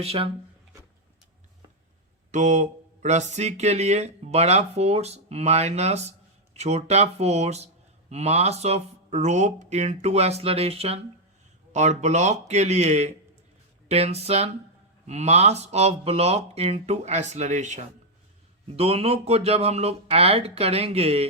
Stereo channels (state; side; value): normal; both; correlation 0.00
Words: तो रस्सी के लिए बड़ा फोर्स माइनस छोटा force mass of rope into acceleration, और ब्लॉक के लिए tension mass of block into acceleration. दोनों को जब हम लोग ऐड करेंगे